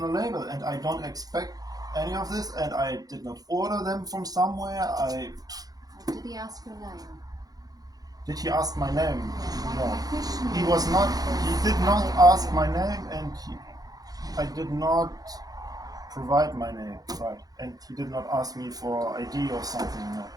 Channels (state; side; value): late; left; 0.18 ms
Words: label, and I don't expect any of this, and I did not order them from somewhere. Or did he ask your name? Did he ask my name? My No. question He is- was not. He did not ask my name, and I did not provide my name, right? And he did not ask me for ID or something. No.